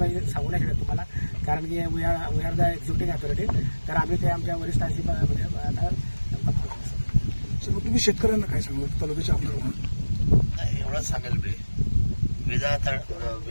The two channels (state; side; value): inverted; both; correlation -1.00